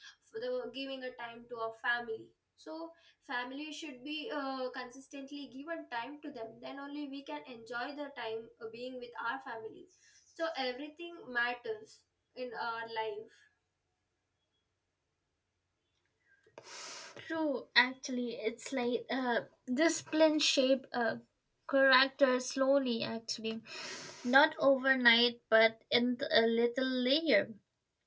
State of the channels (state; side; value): identical; both; correlation 1.00